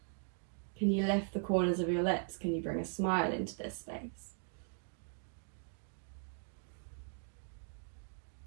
Can you lift the corners of your lips? Can you bring a smile into this space?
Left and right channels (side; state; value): left; silent; 52 dB below the other